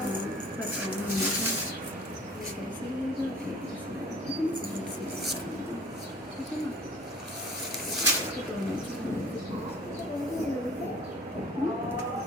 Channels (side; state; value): both; normal; correlation 0.47